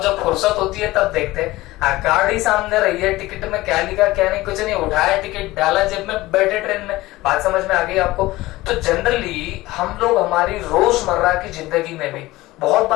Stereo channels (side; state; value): right; quieter; 18.5 dB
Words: जब फुर्सत होती है तब देखते। कार्ड ही सामने रही है, टिकट में क्या लिखा क्या नहीं, कुछ नहीं, उठाया टिकट डाला जेब में, बैठे ट्रेन में। बात समझ में आ गई आपको? तो जनरली हम लोग हमारी रोजमर्रा की जिंदगी में भी बहुत